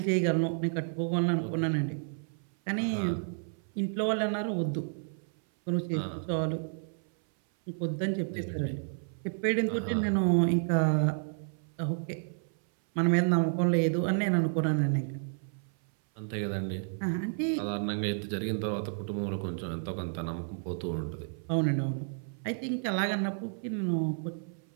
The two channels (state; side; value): silent; left; 57 dB below the other